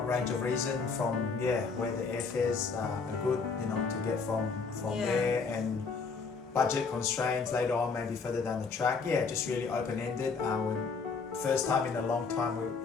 range of reason, from where the airfares are good, to get from there, and budget constraints later on, maybe further down the track. Yeah, just really open-ended. First time in a long time we're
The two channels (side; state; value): right; quieter; 4.9 dB